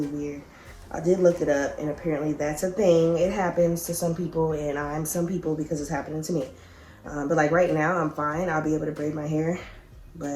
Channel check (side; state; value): both; identical; correlation 1.00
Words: weird. I did look it up, and apparently that's a thing. It happens to some people, and I'm some people because it's happening to me. But like right now, I'm fine. I'll be able to braid my hair.